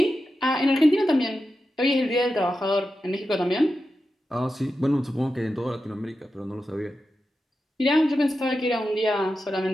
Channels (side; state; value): both; normal; correlation 0.90